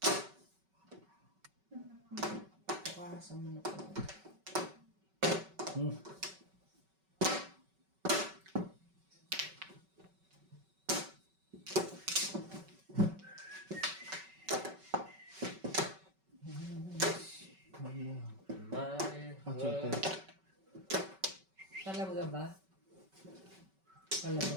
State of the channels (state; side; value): late; left; 5.3 ms